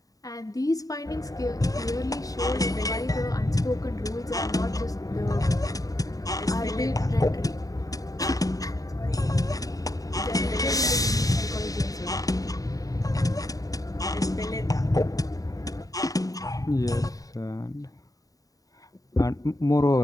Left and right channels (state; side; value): late; right; 0.17 ms